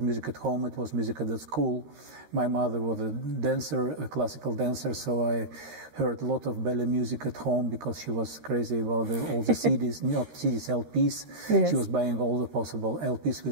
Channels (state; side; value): late; left; 13 ms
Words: at home, it was music at the school. My mother was a dancer, a classical dancer, so I heard a lot of ballet music at home because she was crazy about all the CDs, not CDs, LPs. Yes. She was buying all the possible LPs